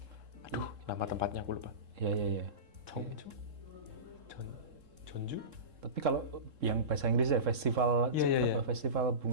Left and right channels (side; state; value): left; late; 3.7 ms